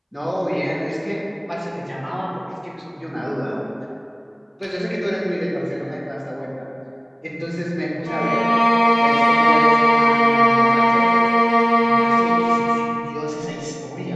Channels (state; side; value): identical; both; correlation 1.00